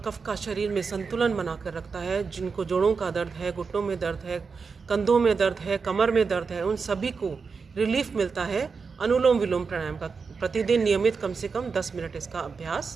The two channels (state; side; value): quieter; left; 5.1 dB